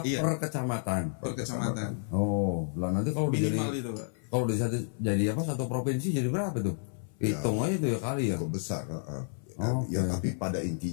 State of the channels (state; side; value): silent; right; 56 dB below the other